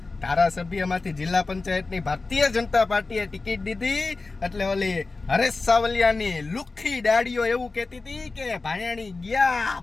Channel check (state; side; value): quieter; right; 3.7 dB